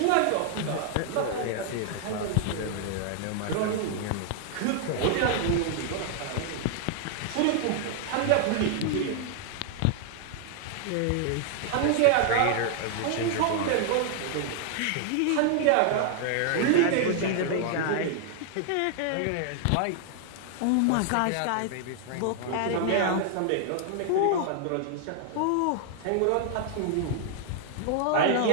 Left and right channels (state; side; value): different; both; correlation 0.00